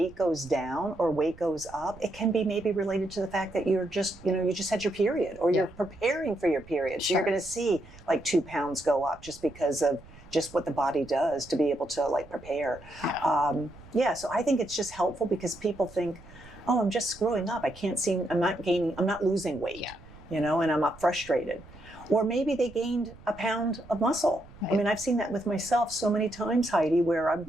goes down or weight goes up, it can be maybe related to the fact that you're just, you know, you just had your period, or you're preparing for your period. So you're going to see like 2 pounds go up just because of just what the body does to be able to like prepare. So I think it's just helpful because people think, oh, I'm just screwing up. I'm not losing weight, you know, and I'm not frustrated. Or maybe they gained a pound of muscle. I mean, I've seen that with myself so many times, Heidi, where I'm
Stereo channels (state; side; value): noise; right; rumble, 21 dB below the sound